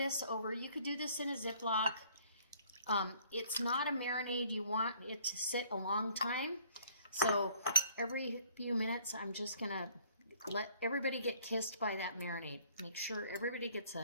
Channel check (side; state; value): both; inverted; correlation -0.58